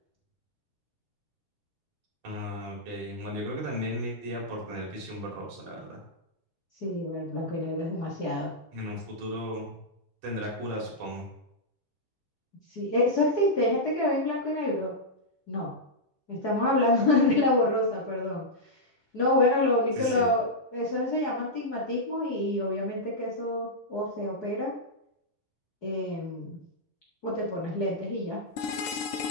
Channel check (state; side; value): normal; both; correlation -0.08